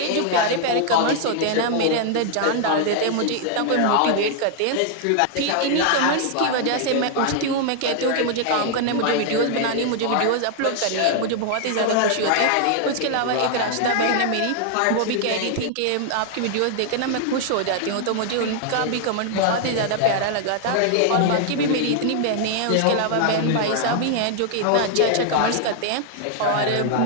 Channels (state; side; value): different; both; correlation 0.00